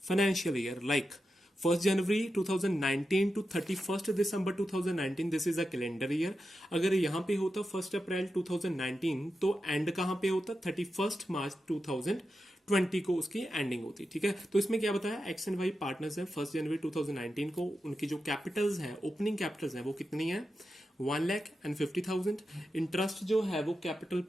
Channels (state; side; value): normal; both; correlation 0.90